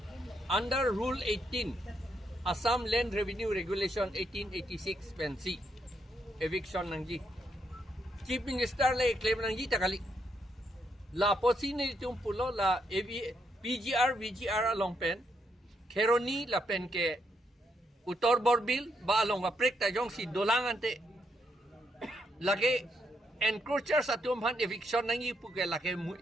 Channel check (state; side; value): normal; both; correlation 0.78